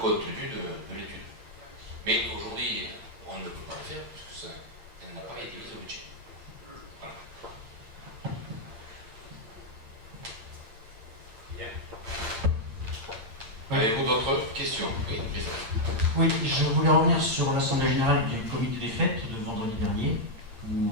de l'étude. Mais aujourd'hui, on ne peut pas le faire parce que elle n'a pas été mise au budget. Voilà. Avez-vous d'autres questions? Oui, oui, je voulais revenir sur l'Assemblée Générale du Comité des Fêtes de vendredi dernier, où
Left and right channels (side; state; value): left; late; 8.7 ms